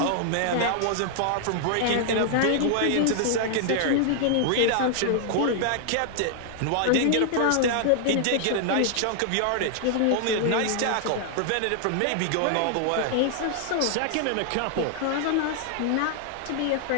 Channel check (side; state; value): both; different; correlation 0.00